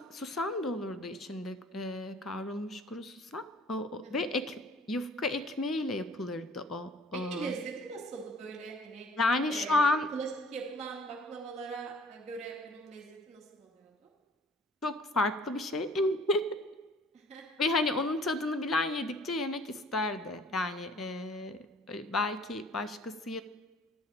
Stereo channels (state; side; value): normal; both; correlation 0.53